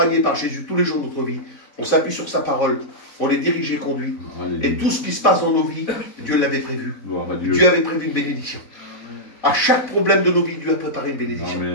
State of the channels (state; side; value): late; right; 4.0 ms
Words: par Jésus tous les jours de notre vie. On s'appuie sur sa parole. On est dirigé et conduit. Alléluia. Et tout ce qui se passe dans nos vies, Dieu l'avait prévu. Gloire à Dieu. Dieu avait prévu une bénédiction. À chaque problème de nos vies, Dieu a préparé une bénédiction.